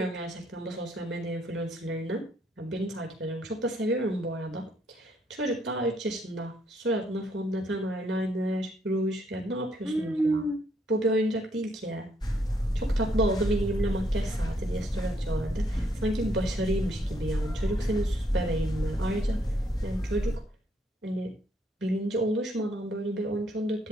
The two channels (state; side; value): normal; both; correlation 0.71